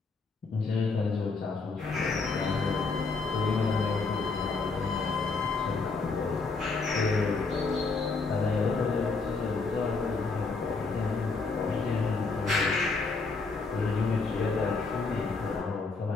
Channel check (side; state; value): right; quieter; 4.1 dB